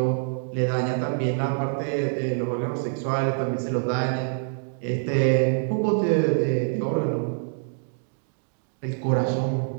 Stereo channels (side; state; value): left; silent; digital silence